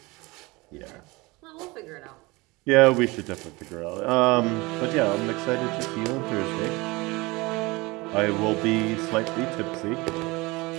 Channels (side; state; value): left; quieter; 23.6 dB